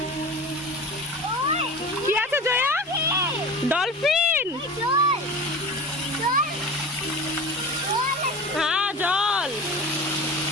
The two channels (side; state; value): both; normal; correlation 0.33